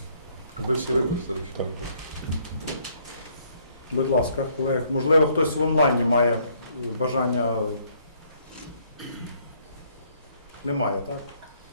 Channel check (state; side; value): inverted; both; correlation -0.66